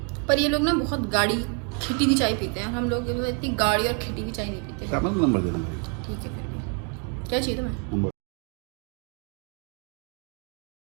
पर ये लोग ना बहुत गाढ़ी खिटी की चाय पीते हैं, हम लोग इतनी गाढ़ी और खिटी की चाय नहीं पीते। नंबर देना। ठीक है, फिर भी क्या चाहिए तुम्हें?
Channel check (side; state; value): left; quieter; 36.5 dB